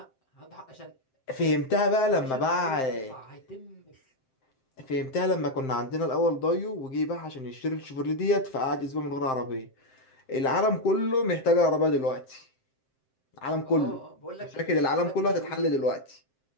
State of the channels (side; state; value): right; late; 7.6 ms